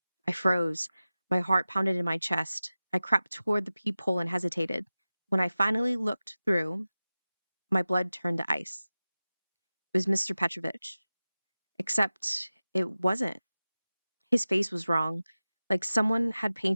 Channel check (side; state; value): both; inverted; correlation -0.96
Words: I froze. My heart pounded in my chest. I crept toward the peephole and hesitated. When I finally looked through, my blood turned to ice. It was Mr. Petrovich. Except it wasn't. His face was wrong, like someone had